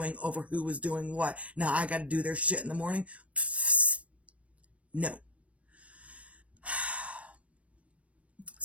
over who was doing what. Now I got to do their shit in the morning. No.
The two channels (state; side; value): late; left; 0.064 ms